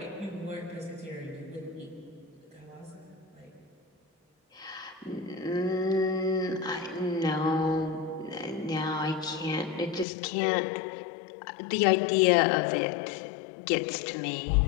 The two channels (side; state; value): right; drops out; at 10.1 s